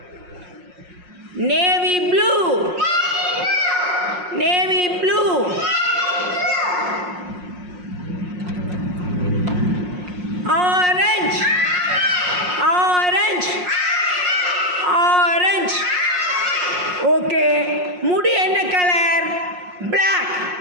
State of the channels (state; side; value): late; left; 5.6 ms